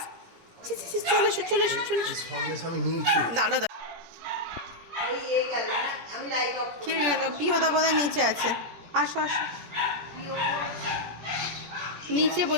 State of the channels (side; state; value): left; late; 17 ms